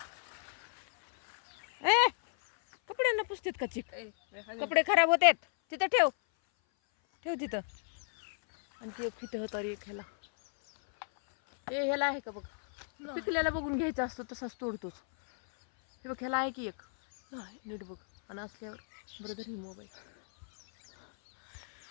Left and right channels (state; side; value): silent; right; 56 dB below the other